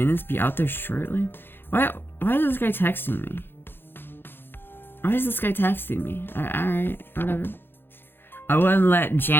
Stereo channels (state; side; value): late; right; 0.10 ms